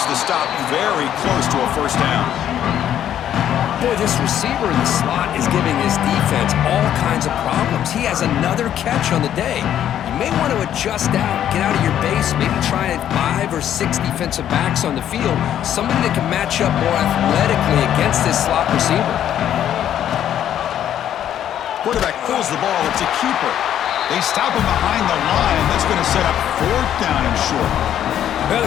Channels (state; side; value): quieter; right; 10.6 dB